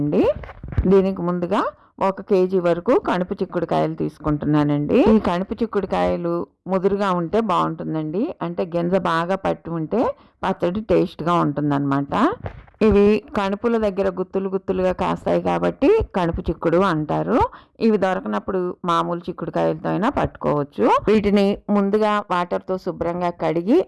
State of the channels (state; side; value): identical; both; correlation 1.00